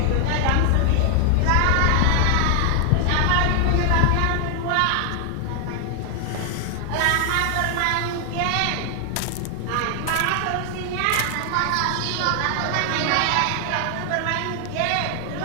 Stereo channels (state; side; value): different; both; correlation 0.00